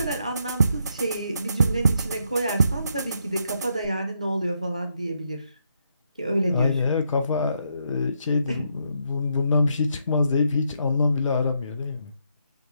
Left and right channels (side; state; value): both; inverted; correlation -0.77